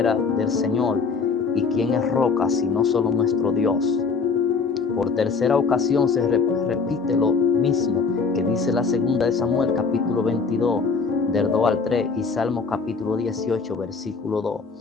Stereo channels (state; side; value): quieter; right; 4.9 dB